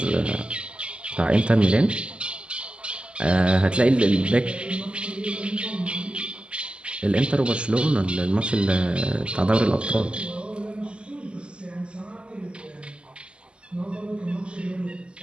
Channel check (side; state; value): left; late; 0.052 ms